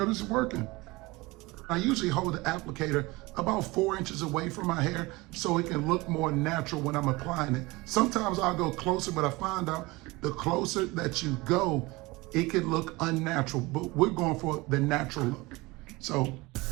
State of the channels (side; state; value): left; quieter; 22.6 dB